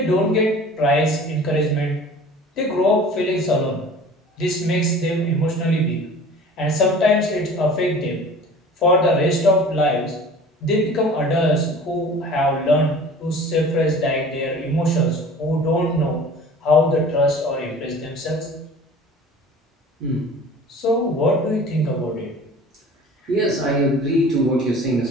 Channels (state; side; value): normal; both; correlation 0.43